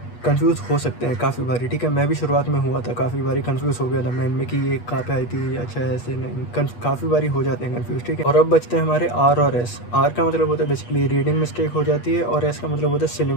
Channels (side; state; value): right; late; 8.3 ms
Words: कंफ्यूज हो सकते हैं काफ़ी बारी, ठीक है। मैं भी शुरुआत में हुआ था, काफ़ी बारी कंफ्यूज हो गया था मैं इनमें कि ये कहाँ पे आई थी, अच्छा ऐसे नहीं, काफ़ी बारी हो जाते हैं कंफ्यूज, ठीक है। और अब बचते हैं हमारे आर और एस। आर का मतलब होता है बेसिकली रीडिंग मिस्टेक हो जाती है, और एस का मतलब होता है सिली